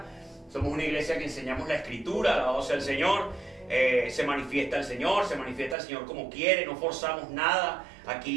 Somos una iglesia que enseñamos la Escritura, alabado sea el Señor. Se manifiesta el Señor como quiere, no forzamos nada.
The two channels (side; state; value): left; drops out; at 5.8 s